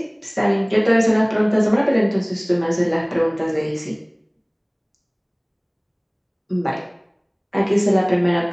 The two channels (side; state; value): both; identical; correlation 1.00